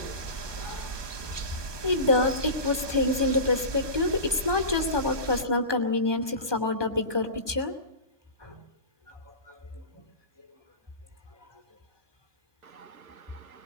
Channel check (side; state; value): left; late; 1.2 ms